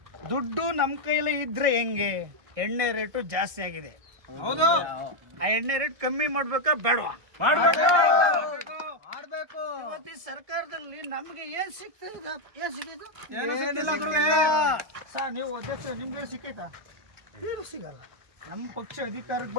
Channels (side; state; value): left; late; 1.8 ms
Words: ದುಡ್ಡು ನಮ್ ಕೈಲಿ ಇದ್ರೆ ಹೆಂಗೆ? ಎಣ್ಣೆ ರೇಟು ಜಾಸ್ತಿ ಆಗಿದೆ. ಆ ಎಣ್ಣೆ ರೇಟ್ ಕಮ್ಮಿ ಮಾಡ್ಬೇಕಾ ಬೇಡವಾ? ಇವತ್ತು ಈ ಸರ್ಕಾರದಲ್ಲಿ ನಮ್ಗೆ ಏನ್ ಸಿಗ್ತದೆ? ಏನ್ ಸಿಕ್ಕಿದ್ದು? ನೀವು ಅಧ್ಯಕ್ಷ, ನಿಮ್ಗೆ ಸಿಕ್ಕೈತಾ? ಏನು ಸಿಗಲ್ಲ. ನಮ್ಮ ಪಕ್ಷ ಅಧಿಕಾರಕ್ಕೆ